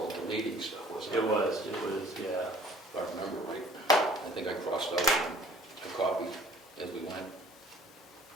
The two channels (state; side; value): normal; both; correlation 0.53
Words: deleting stuff, wasn't it? It was, yeah. If I remember right. I think I crossed out a copy as we went.